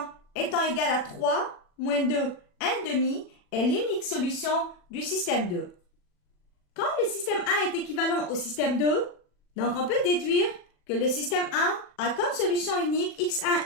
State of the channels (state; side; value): late; right; 40 ms